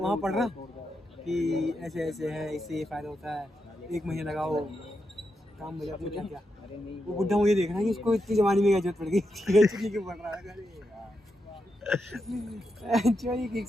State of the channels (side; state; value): both; normal; correlation 0.85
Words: पढ़ रहा कि ऐसे ऐसे है, इससे ये फायदा होता है, 1 महीने लगाओ काम मिले आपको क्या क्या। वो बुड्ढा मुझे देख रहा है कि इसको इतनी जवानी में क्या जरूरत पड़ गई, चुकी क्यों पढ़ रहा है। चोरी की एक